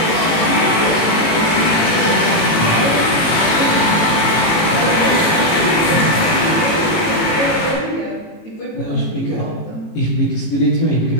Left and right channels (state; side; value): late; right; 18 ms